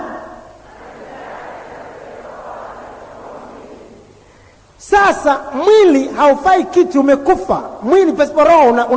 sasa mwili haufai kitu, umekufa. Mwili pasipo roho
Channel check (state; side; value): identical; both; correlation 1.00